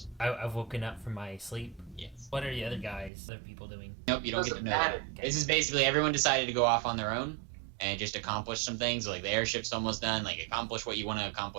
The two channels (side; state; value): left; drops out; at 3.1 s